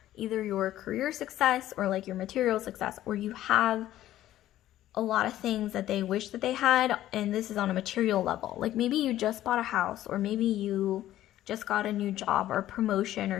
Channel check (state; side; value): quieter; right; 13.5 dB